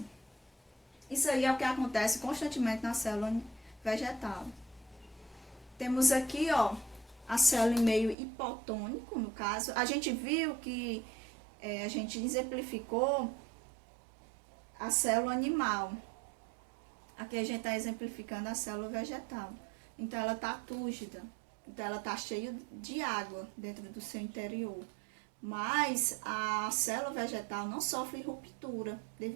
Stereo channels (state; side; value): drops out; left; at 8.2 s